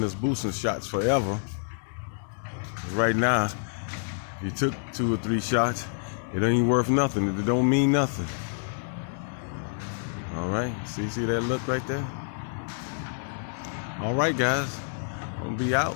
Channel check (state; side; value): silent; right; digital silence